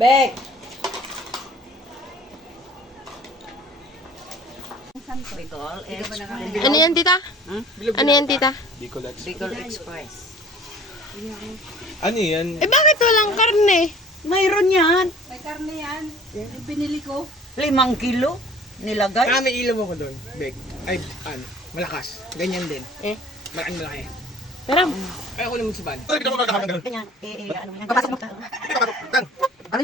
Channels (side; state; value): both; normal; correlation 0.48